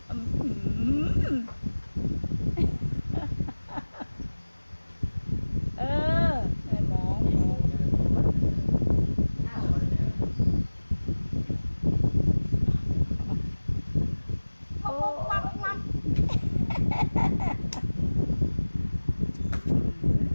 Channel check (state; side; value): inverted; both; correlation -1.00